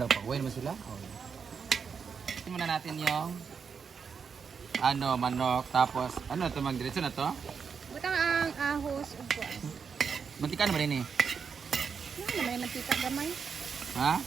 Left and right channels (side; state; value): left; quieter; 6.1 dB